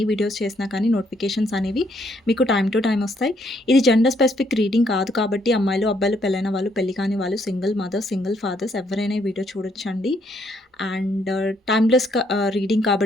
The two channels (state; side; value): normal; both; correlation 0.71